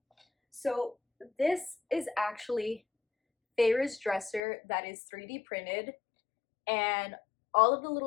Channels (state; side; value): drops out; right; at 4.4 s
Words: So this is actually Feyre's dresser that is 3D printed, and all of the